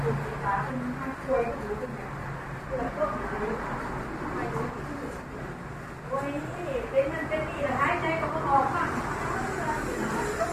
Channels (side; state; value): both; identical; correlation 1.00